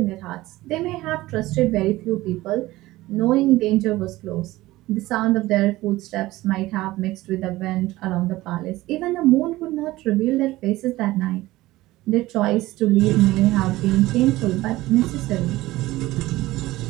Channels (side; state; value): left; quieter; 17.9 dB